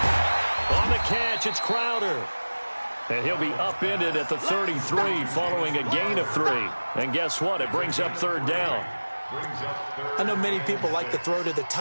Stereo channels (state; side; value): inverted; both; correlation -1.00